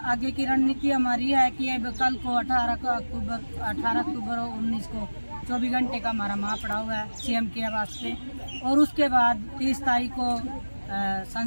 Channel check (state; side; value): inverted; both; correlation -1.00